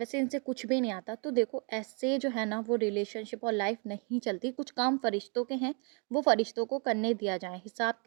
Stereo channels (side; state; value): left; quieter; 36.6 dB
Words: इनसे कुछ भी नहीं आता। तो देखो, ऐसे जो है ना वो रिलेशनशिप और लाइफ नहीं चलती। कुछ काम फ़रिश्तों के हैं, वो फ़रिश्तों को करने दिया जाए।